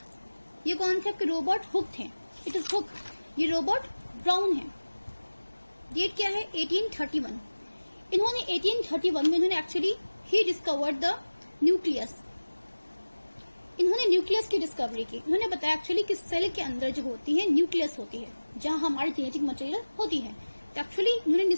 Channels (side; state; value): both; inverted; correlation -1.00